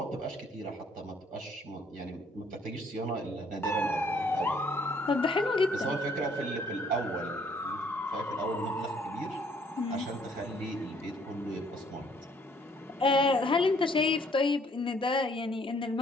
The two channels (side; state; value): both; normal; correlation 0.63